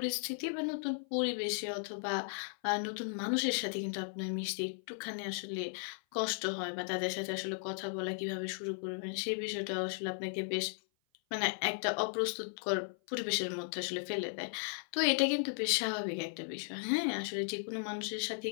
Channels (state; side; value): silent; right; 54 dB below the other